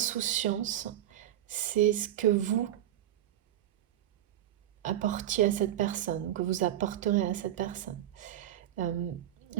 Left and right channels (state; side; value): quieter; left; 12.1 dB